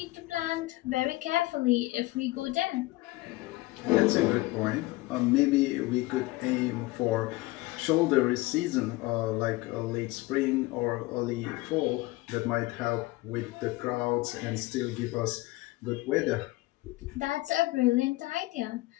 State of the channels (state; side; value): quieter; right; 20.3 dB